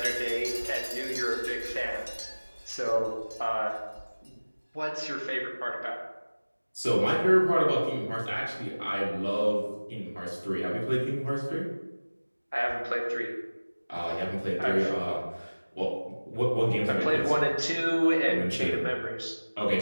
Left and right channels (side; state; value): both; inverted; correlation -1.00